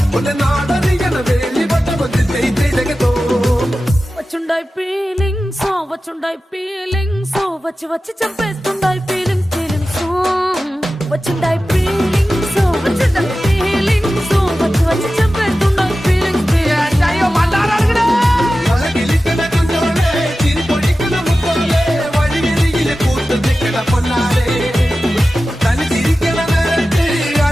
వచ్చుండాయి ఫీలింగ్స్ వచ్చుండాయి ఫీలింగ్స్ వచ్చి వచ్చి చంపేస్తుండాయి ఫీలింగ్స్ వచ్చిండాయి ఫీలింగ్స్ వచ్చుండాయి ఫీలింగ్స్ వచ్చి వచ్చి చంపేస్తుండాయి ఫీలింగ్స్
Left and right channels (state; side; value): normal; both; correlation 0.94